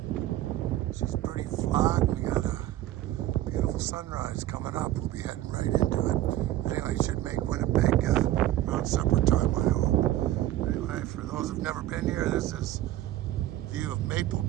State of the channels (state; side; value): quieter; left; 14.4 dB